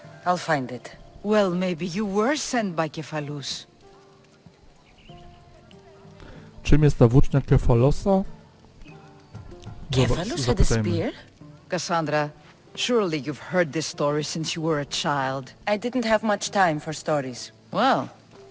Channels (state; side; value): identical; both; correlation 1.00